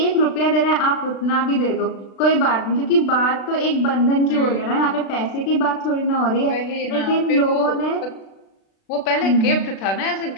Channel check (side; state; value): right; late; 36 ms